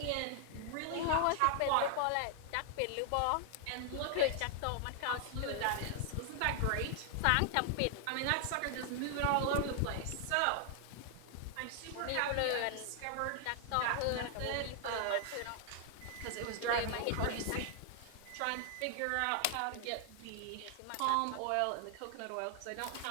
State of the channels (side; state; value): both; different; correlation 0.00